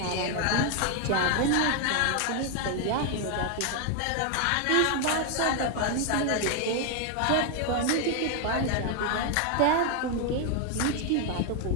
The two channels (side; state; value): both; different; correlation 0.01